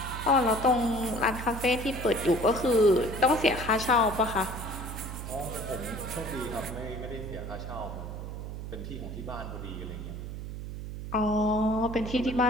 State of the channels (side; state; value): right; noise; hum, 8 dB below the sound